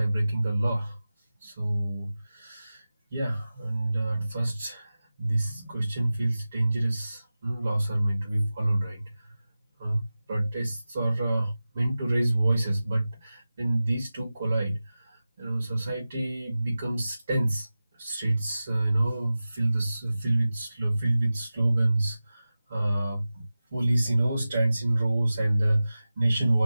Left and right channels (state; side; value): inverted; both; correlation -0.96